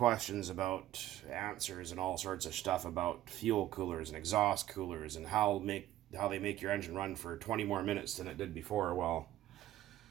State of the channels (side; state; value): left; quieter; 13.8 dB